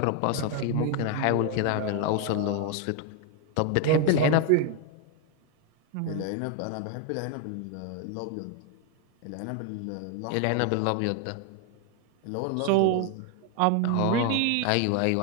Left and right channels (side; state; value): both; different; correlation 0.01